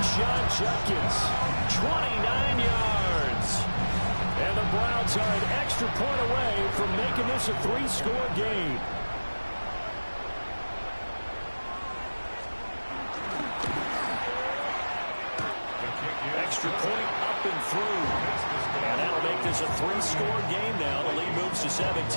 Judkins, 29 yards. And the Browns are an extra point away from making this a 3-score game. Extra point up and through. And that'll make this a 3-score game now. The lead moves to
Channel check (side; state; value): both; inverted; correlation -1.00